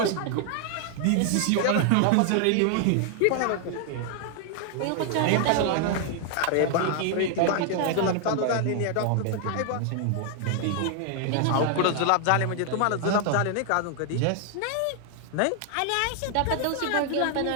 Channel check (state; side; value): different; both; correlation 0.00